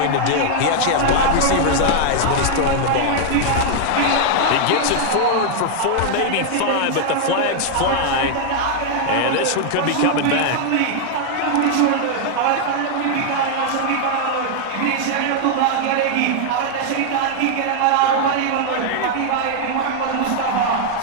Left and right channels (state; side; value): different; both; correlation 0.00